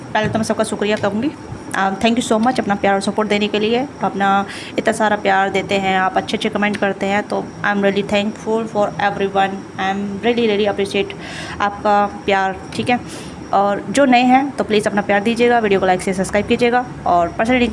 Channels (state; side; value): identical; both; correlation 1.00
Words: पहले तो मैं सबका शुक्रिया कहूँगी। थैंक यू सो मच अपना प्यार और सपोर्ट देने के लिए। अपना इतना सारा प्यार देते हैं आप, अच्छे अच्छे कमेंट करते हैं, तो I am really thankful for everyone. I am really appreciate आपका प्यार। ठीक है, और जो नए हैं तो प्लीज़ अपना प्यार दीजिएगा, वीडियो को लाइक से सब्सक्राइब कीजिएगा और पर्सनली